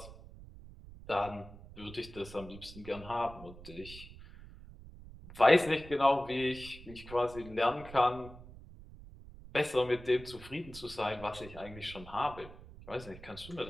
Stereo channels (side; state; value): right; noise; rumble, 16 dB below the sound